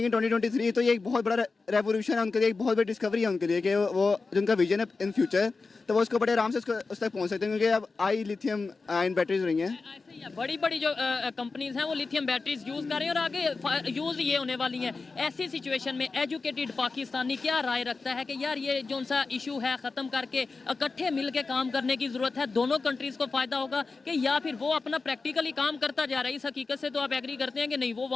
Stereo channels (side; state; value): right; quieter; 4.1 dB